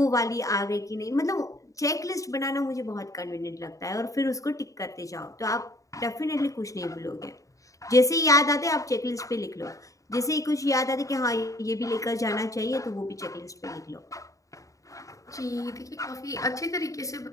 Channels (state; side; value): late; right; 0.16 ms